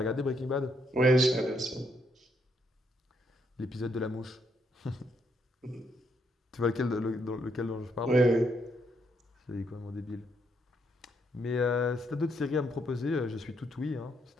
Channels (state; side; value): normal; both; correlation 0.75